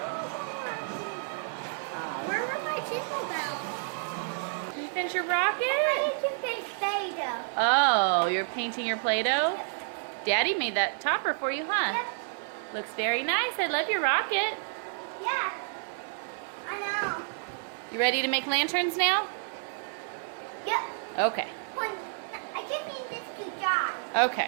Where were my chisel bells? You finish your rocket? I need to paint Play-Doh. Oh, you're painting your Play-Doh? Daddy made that topper for you, huh? Yep. Looks very nice. I love your rocket. Yeah. I know. You ready to make lanterns now? Yep. Okay. I just need this to dry.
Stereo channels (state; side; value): silent; left; digital silence